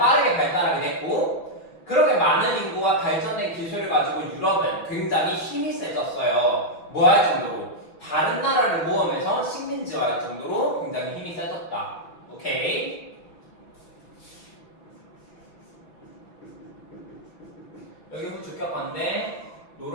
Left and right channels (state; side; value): late; right; 5.2 ms